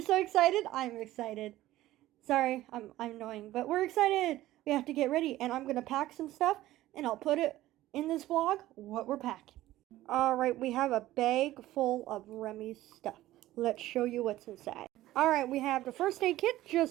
so excited? I'm excited. Sorry, I'm annoying, but we're excited. We have to get ready, and I'm gonna pack some stuff, and I'll put it in this vlog what we're packing. All right, we have a bag full of Remy's stuff. Let's show you what's inside. All right, we have the first aid kit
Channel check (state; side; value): quieter; left; 15.5 dB